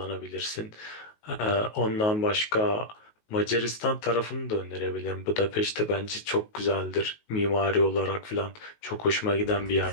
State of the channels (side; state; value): right; late; 19 ms